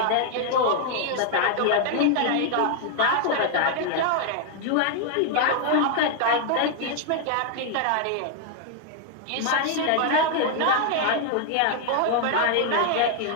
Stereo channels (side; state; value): both; different; correlation 0.00